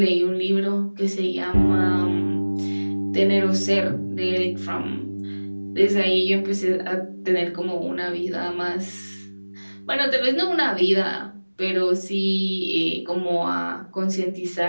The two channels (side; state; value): both; inverted; correlation -1.00